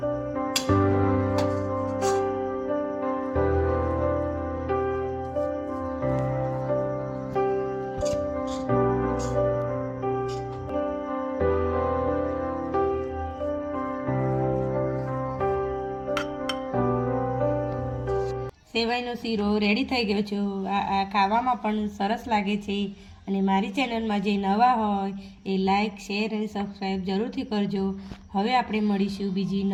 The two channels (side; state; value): both; identical; correlation 1.00